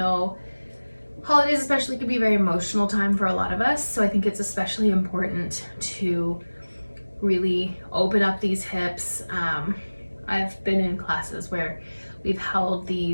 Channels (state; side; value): inverted; both; correlation -1.00